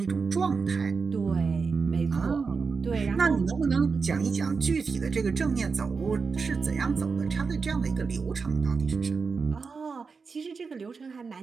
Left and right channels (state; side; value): quieter; left; 5.0 dB